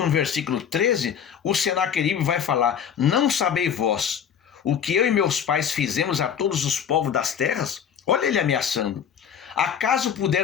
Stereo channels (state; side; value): quieter; right; 8.1 dB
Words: versículo 13, o Senaqueribe vai falar: não sabeis vós o que eu e meus pais fizemos a todos os povos das terras? Olha ele ameaçando. Acaso